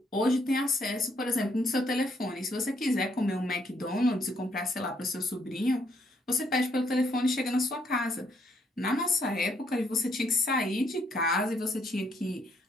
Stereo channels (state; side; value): normal; both; correlation 0.70